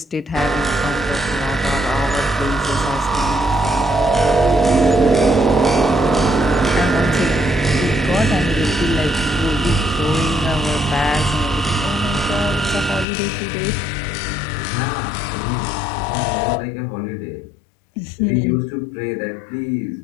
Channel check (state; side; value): drops out; right; at 13.1 s